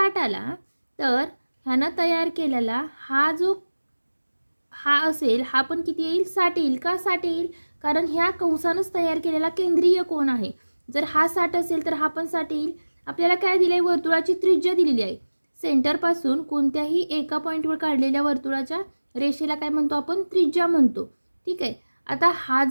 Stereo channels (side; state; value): both; inverted; correlation -1.00